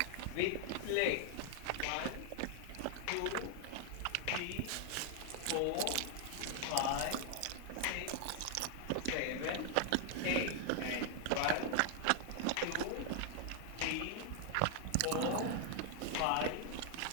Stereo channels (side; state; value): both; different; correlation 0.00